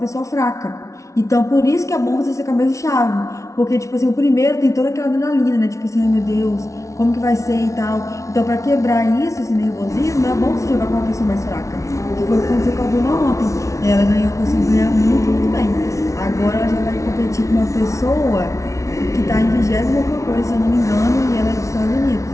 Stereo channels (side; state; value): right; late; 0.15 ms